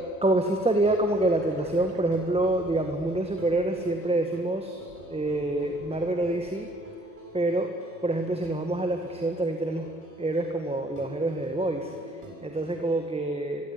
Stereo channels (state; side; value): normal; both; correlation 0.60